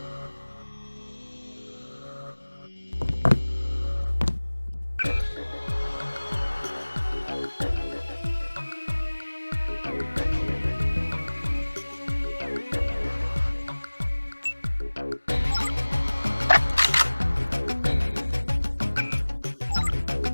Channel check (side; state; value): both; inverted; correlation -1.00